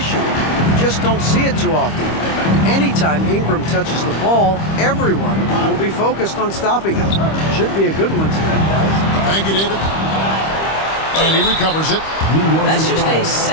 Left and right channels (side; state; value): right; late; 25 ms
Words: You just don't see it too often. Anytime Ingram touches the ball, everyone will be focused on stopping him. Should be a good one tonight, guys. Thank you, David. And he recovers it. That's just a